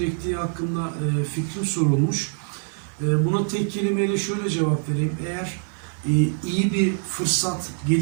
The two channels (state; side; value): silent; left; 62 dB below the other